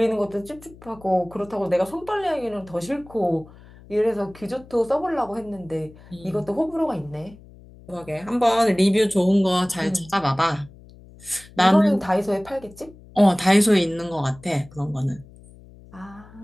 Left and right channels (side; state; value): left; noise; hum, 22 dB below the sound